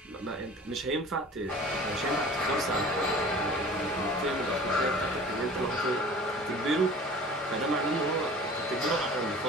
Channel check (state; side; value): normal; both; correlation 0.44